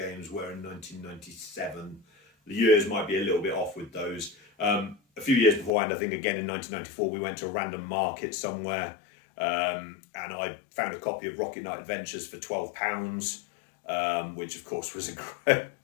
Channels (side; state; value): right; drops out; at 5.7 s